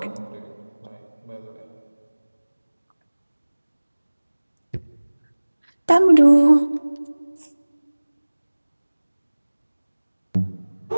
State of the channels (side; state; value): both; inverted; correlation -1.00